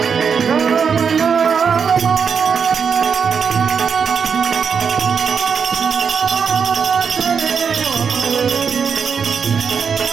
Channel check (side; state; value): left; quieter; 6.4 dB